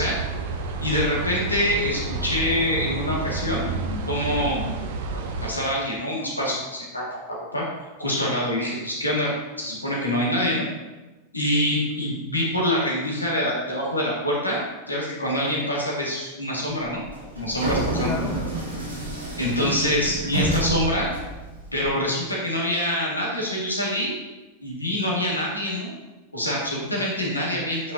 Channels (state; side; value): normal; both; correlation -0.19